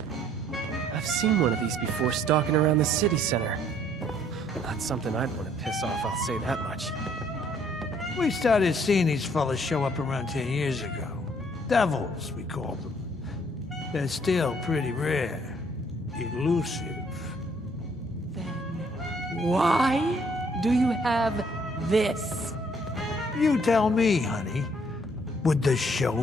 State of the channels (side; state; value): both; normal; correlation 0.63